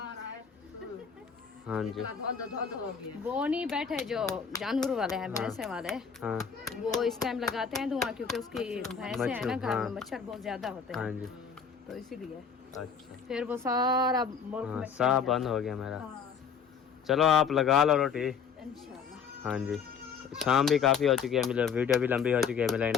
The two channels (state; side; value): quieter; right; 6.5 dB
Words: हाँ जी वो नहीं बैठे जो जानवर वाले हैं, भैंसे वाले, हाँ वो इस टाइम लगाते हैं धुआं क्योंकि उसकी भैंसे है ना घर हाँ। में, मच्छर बहुत ज्यादा होते हाँ हैं, जी तो इसीलिए अच्छा फिर वो सारा मुल्क हाँ में साफ बंद हो गया मेरा। हाँ, चलो आप लगा लो रोटी। इंशाल्लाह। हाँ जी शाम भी काफ़ी हो चुकी है, मिले वीडियो भी लंबी हो चुकी है। मिले